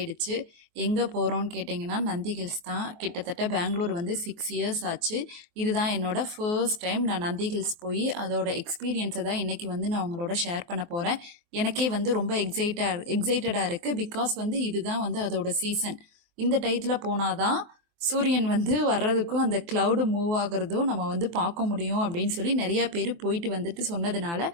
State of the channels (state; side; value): late; left; 23 ms